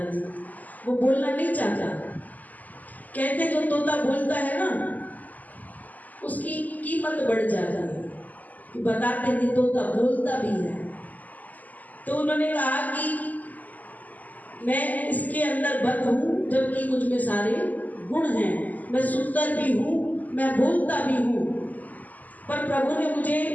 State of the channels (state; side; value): late; right; 0.080 ms